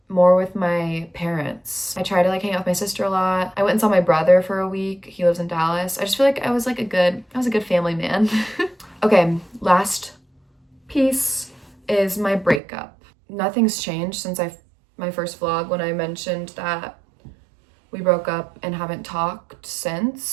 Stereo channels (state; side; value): drops out; left; at 12.6 s